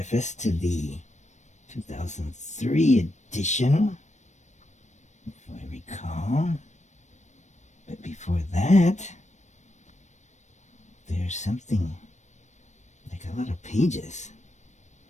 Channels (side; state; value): right; late; 0.34 ms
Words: to the 2003 edition, if I recall. But before that, there's something like a lot of pages.